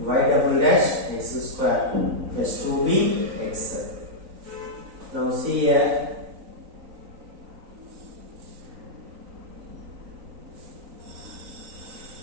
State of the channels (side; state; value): left; late; 3.9 ms